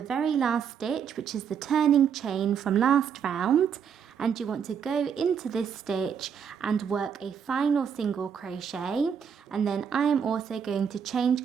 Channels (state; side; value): quieter; left; 7.4 dB